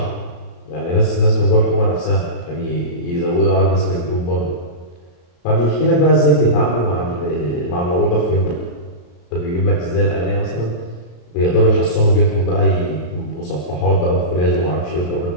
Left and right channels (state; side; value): late; right; 34 ms